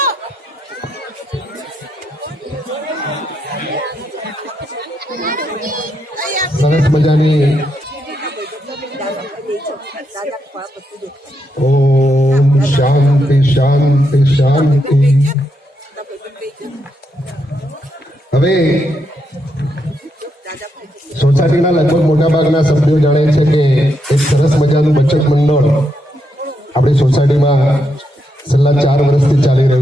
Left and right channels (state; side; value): normal; both; correlation 0.81